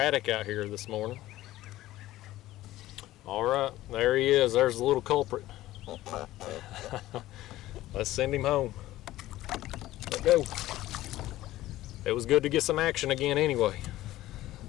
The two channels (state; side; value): quieter; right; 15.6 dB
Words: out here this morning. All right, there he is. There's the little culprit. Let's send him home. Let go. It was good to get some action again anyway.